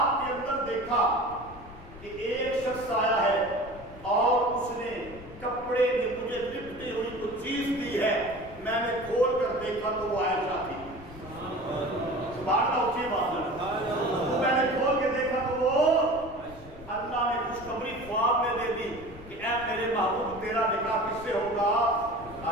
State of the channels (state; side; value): noise; left; rumble, 17 dB below the sound